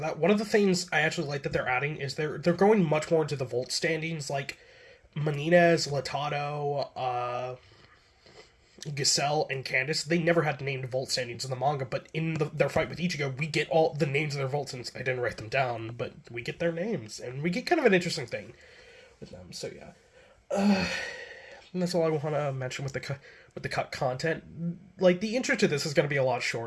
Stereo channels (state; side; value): identical; both; correlation 1.00